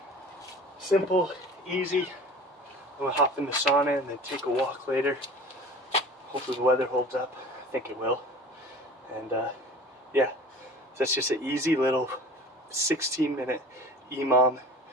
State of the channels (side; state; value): both; normal; correlation 0.41